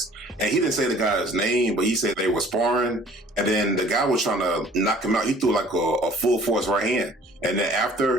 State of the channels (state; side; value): normal; both; correlation 0.52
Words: and he didn't say the guy's name, but he said they were sparring, and then the guy was trying to knock him out. He threw like a full force right hand. And then